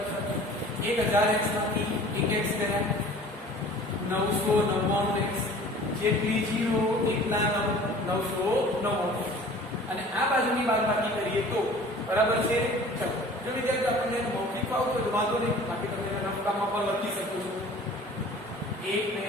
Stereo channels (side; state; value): both; normal; correlation 0.46